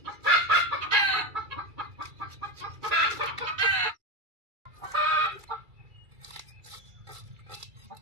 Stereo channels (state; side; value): late; left; 2.3 ms